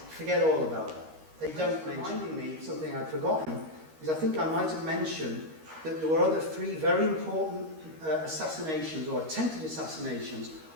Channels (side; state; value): left; late; 13 ms